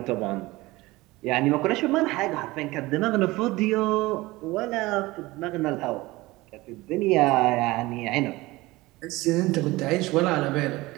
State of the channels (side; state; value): left; quieter; 20.3 dB